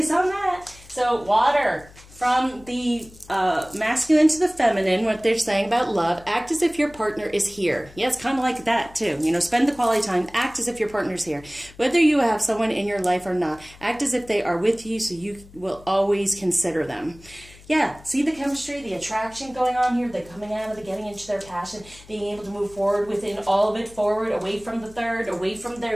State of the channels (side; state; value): left; noise; hum, 22 dB below the sound